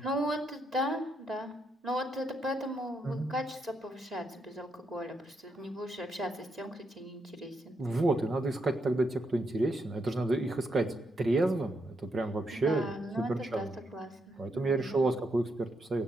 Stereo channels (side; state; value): both; normal; correlation 0.79